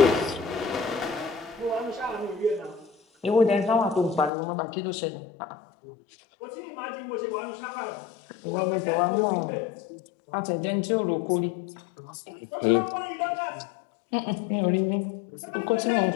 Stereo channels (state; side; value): drops out; right; at 4.3 s